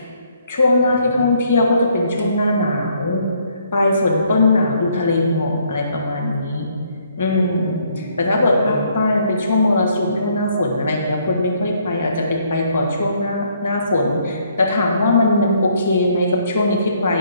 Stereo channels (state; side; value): inverted; both; correlation -0.67